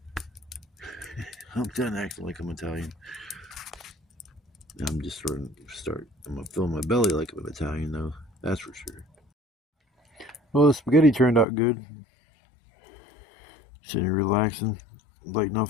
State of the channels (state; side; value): drops out; right; at 11.5 s